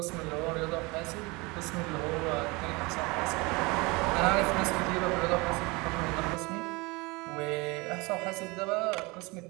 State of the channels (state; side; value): quieter; left; 25.4 dB